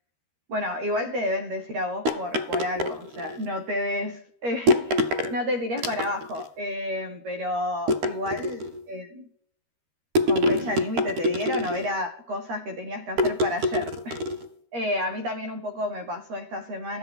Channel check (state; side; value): late; left; 13 ms